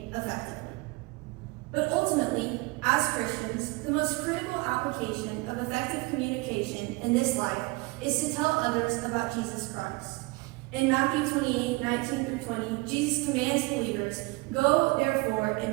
effectively. But ultimately, as Christians, the most critical application of effective communication in this life is to tell others about Jesus Christ. In Matthew 28:19-20, Jesus commands believers, "Go, therefore,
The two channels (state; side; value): quieter; left; 24.7 dB